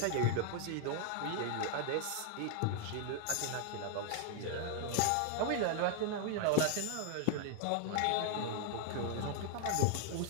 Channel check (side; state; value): both; different; correlation 0.00